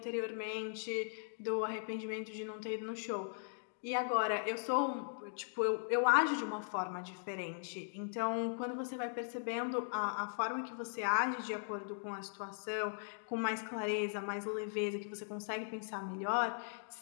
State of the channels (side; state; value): right; silent; digital silence